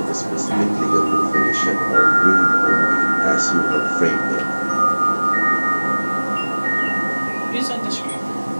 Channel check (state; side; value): inverted; both; correlation -1.00